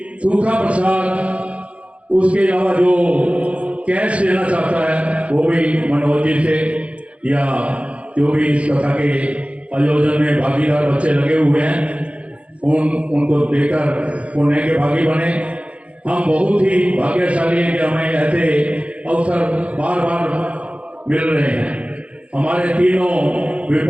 सूखा प्रसाद, उसके अलावा जो कैश लेना चाहता है वो भी मनोज जी से, या जो भी इस कथा के आयोजन में भागीदार बच्चे लगे हुए हैं उनको देकर पुण्य के भागी बने। हम बहुत ही भाग्यशाली हैं कि हमें ऐसे अवसर बार बार मिल रहे हैं। हमारे तीनों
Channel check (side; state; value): left; late; 0.063 ms